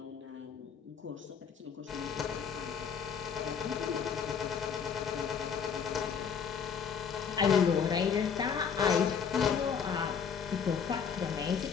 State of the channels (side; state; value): right; quieter; 6.9 dB